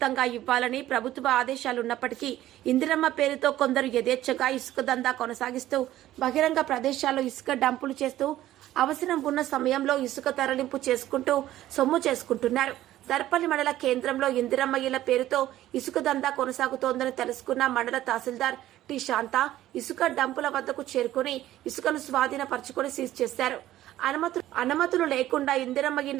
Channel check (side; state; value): left; quieter; 14.0 dB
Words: ఇవ్వాలని ప్రభుత్వ ఆదేశాలున్నప్పటికీ ఇందిరమ్మ పేరుతో కొందరు యథేచ్ఛగా ఇసుక దందా కొనసాగిస్తూ బహిరంగ ప్రదేశాల్లో ఇసుక డంపులు చేస్తూ అవసరం ఉన్న సమయంలో ఇసుక తరలింపు చేసుకుంటూ సొమ్ము చేసుకుంటున్నారు. దర్పల్లి మండల కేంద్రంలో ఇందిరమ్మ ఇళ్ల పేరుతో ఇసుక దందా కొనసాగుతోందని తెలుసుకున్న మండల తహసీల్దార్ టి శాంత ఇసుక డంపుల వద్దకు చేరుకుని ఇసుకను స్వాధీనపరుచుకుని సీజ్ చేశారు. అనుమతులు లేకుండా ఇందిరమ్మ